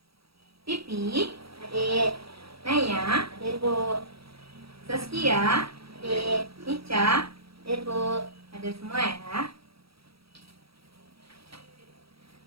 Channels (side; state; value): left; late; 0.76 ms